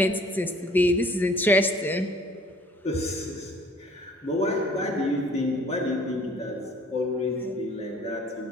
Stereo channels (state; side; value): normal; both; correlation 0.54